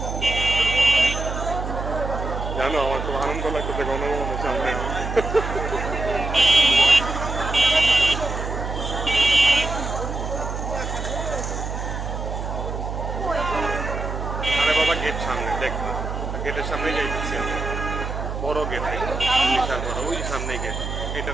জানো, আমার খুব আনন্দ লাগতেছে গণভবনের সামনে। আরে বাবা, গেট সামনে দেখ, গেটের সামনে যাইতেছি আমরা। বড় গেট, বিশাল বড়, ওই সামনে গেট,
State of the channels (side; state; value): right; noise; hum, 5 dB below the sound